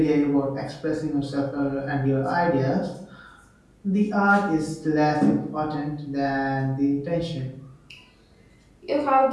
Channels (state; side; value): identical; both; correlation 1.00